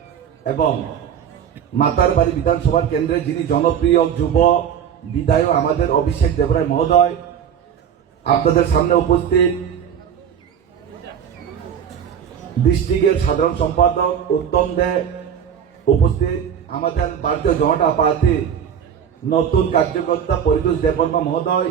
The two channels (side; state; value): left; quieter; 8.4 dB